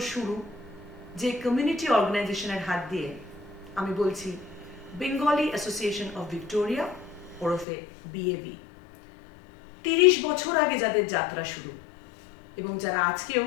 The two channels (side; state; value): right; drops out; at 7.7 s